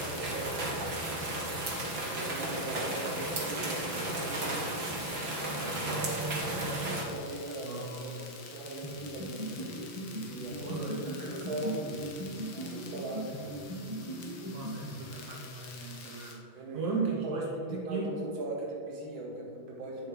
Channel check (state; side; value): late; left; 6.0 ms